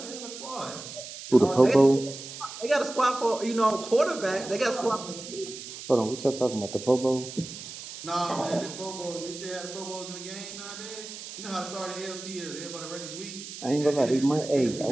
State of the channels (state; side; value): noise; right; hiss, 11 dB below the sound